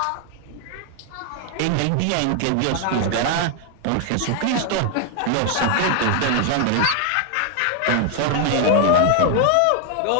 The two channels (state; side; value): different; both; correlation 0.00